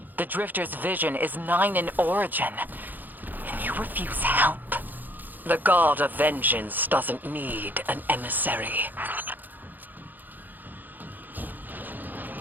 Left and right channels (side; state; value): left; late; 0.086 ms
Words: The Drifter's vision is 9 in origin. And you refuse help? The God of Vengeance doesn't need an emissary.